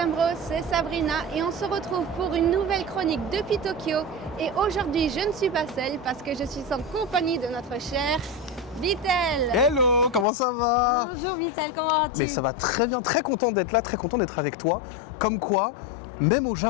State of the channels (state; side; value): drops out; right; at 10.2 s